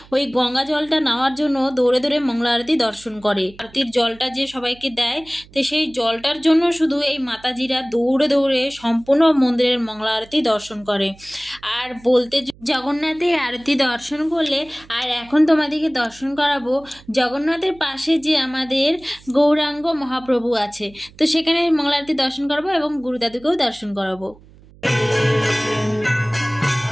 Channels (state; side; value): noise; right; hum, 24 dB below the sound